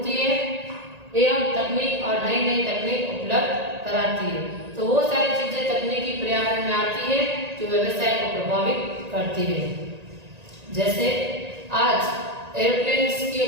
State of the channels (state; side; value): late; left; 1.9 ms